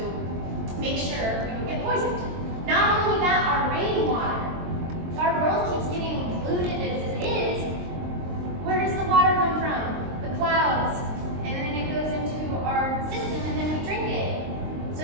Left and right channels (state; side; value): late; left; 22 ms